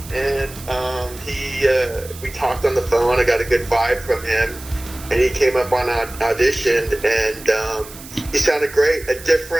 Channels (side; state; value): right; noise; hiss, 16 dB below the sound